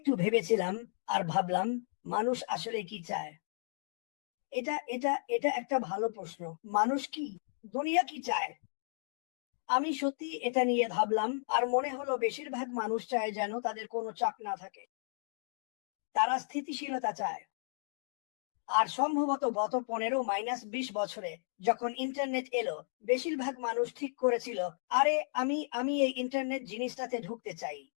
ভেবেছিলাম আর ভাবলাম, মানুষ আসলে কি চায়। এটা একটা ভালো প্রশ্ন। মানুষ কি, দুনিয়া কি চায়? আমি সত্যি এটা নিয়ে ভাবলাম আর মনে হলো বেশিরভাগ মানুষ চায় যেন তাদের কোনো চাপ না থাকে। তারা স্থিতিশীলতা চায়। আর সম্ভবত গত 15-20 বছরে যখন ইন্টারনেট এলো, বেশিরভাগ মানুষ ঠিক করেছিল, আরে আমি এই ইন্টারনেট জিনিসটাতে ঢুকতে চাই।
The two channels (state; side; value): silent; right; digital silence